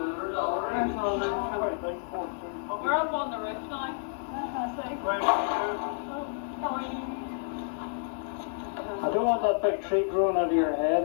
We're up on the roof now. I don't want that big tree growing out of your head,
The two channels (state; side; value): silent; right; 58 dB below the other